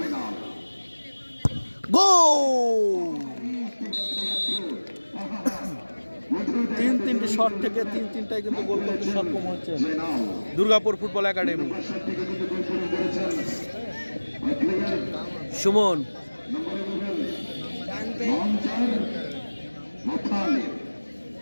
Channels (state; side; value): inverted; both; correlation -1.00